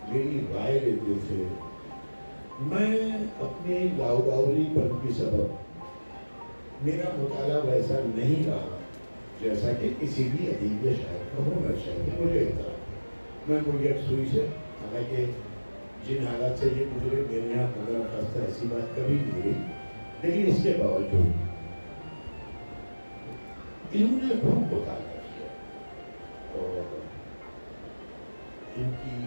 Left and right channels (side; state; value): both; inverted; correlation -1.00